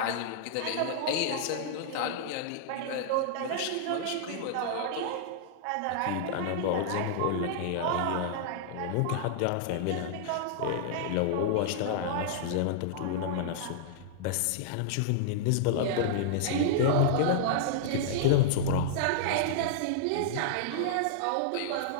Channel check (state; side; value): different; both; correlation -0.01